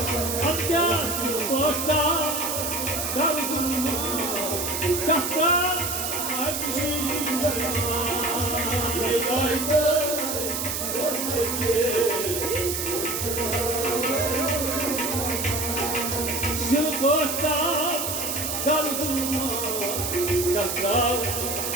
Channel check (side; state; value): right; noise; hiss, 2 dB below the sound